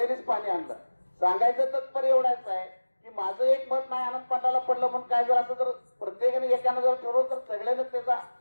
पाणी आणलं. सांगायचं तात्पर्य एवढाच आहे की माझं एक मत नाही आनंद पाटाला पडलं म्हणून काय जर असं जर प्रत्येकाने एकानं जर ठरवलं तर सगळ्यांना त्याचा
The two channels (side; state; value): both; inverted; correlation -1.00